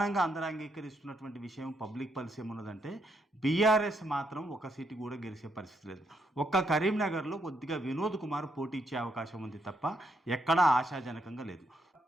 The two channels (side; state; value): both; normal; correlation 0.77